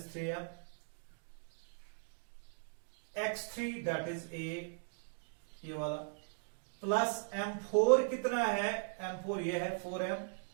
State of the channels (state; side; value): silent; left; digital silence